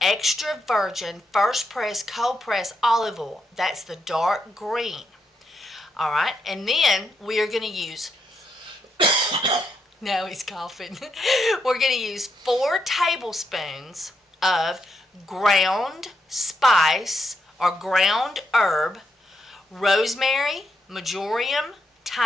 extra virgin first press cold press olive oil. That's the dark green. All right. And then we are going to use now he's coughing. We're going to use 4 tablespoons of ground spice or ground herb, rosemary, marjoram,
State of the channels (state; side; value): normal; both; correlation 0.81